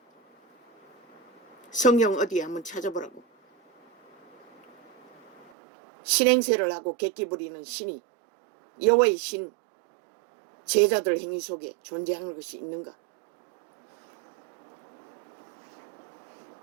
성령 어디에 한번 찾아보라고. 신행세를 하고 객기 부리는 신이 여호와의 신 제자들 행위 속에 존재하는 것이 있는가?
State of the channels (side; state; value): left; drops out; at 5.5 s